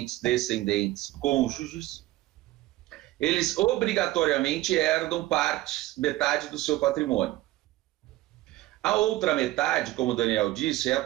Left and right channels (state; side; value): quieter; left; 16.9 dB